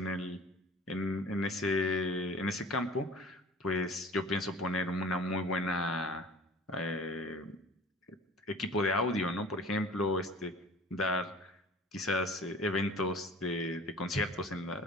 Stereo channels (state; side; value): normal; both; correlation 0.44